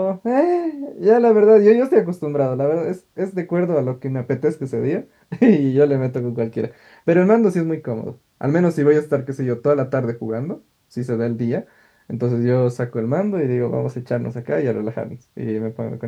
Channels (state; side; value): identical; both; correlation 1.00